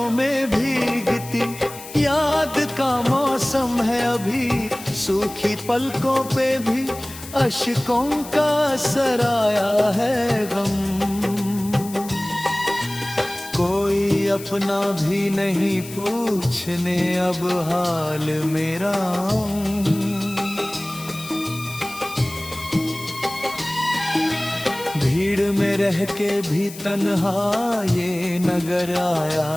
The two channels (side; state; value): left; noise; hiss, 14 dB below the sound